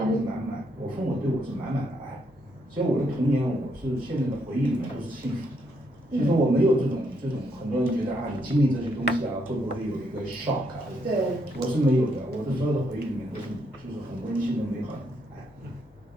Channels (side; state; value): both; normal; correlation 0.75